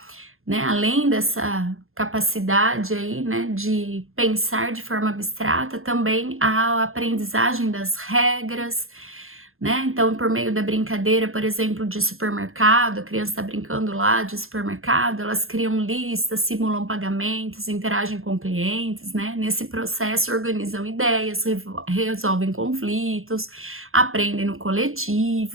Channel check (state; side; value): late; left; 0.61 ms